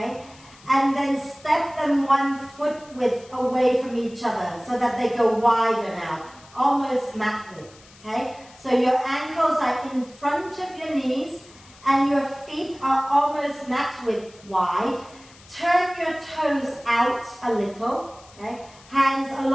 And then step them 1 foot width away from each other so that they go wider now, almost mat width, okay? So your ankles are in front of your knees and your feet are almost mat width wide. Turn your toes out a little, okay? Hands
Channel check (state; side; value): noise; left; hiss, 24 dB below the sound